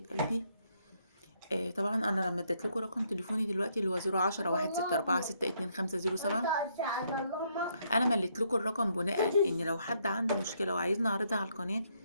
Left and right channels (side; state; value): both; inverted; correlation -0.73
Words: قلبي. طبعا انا لما اديت لكم رقم تليفوني دلوقتي اللي هو 010-164-2507، انا مليت لكم الرقم بناء ان لو حد عنده مشكله وعايزني اعرضها على القناه،